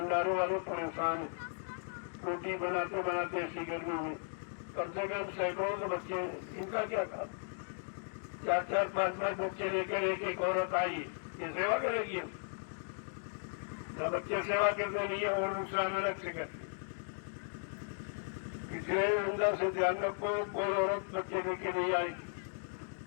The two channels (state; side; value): silent; right; digital silence